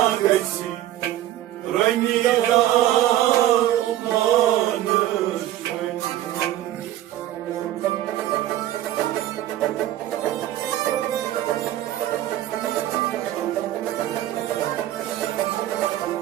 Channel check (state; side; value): quieter; left; 13.4 dB